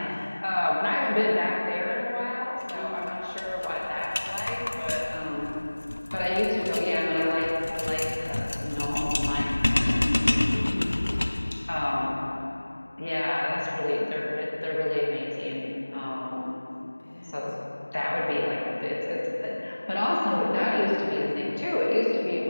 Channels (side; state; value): both; inverted; correlation -1.00